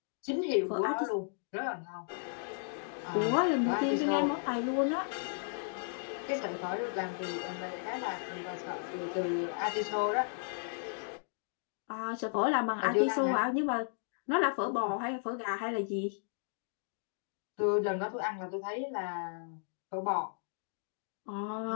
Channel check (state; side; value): silent; right; digital silence